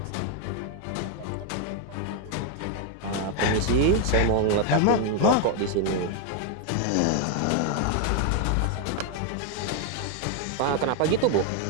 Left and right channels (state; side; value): different; both; correlation 0.01